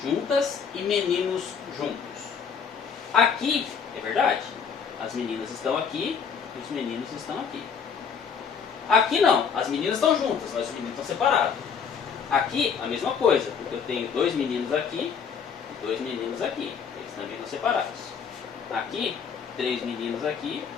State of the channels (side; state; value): right; quieter; 6.6 dB